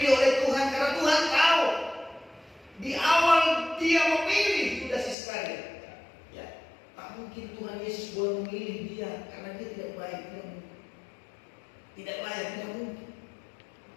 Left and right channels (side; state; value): right; drops out; at 5.2 s